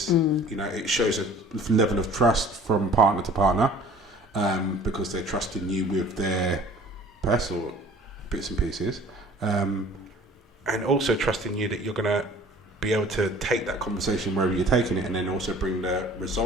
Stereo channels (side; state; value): both; normal; correlation 0.49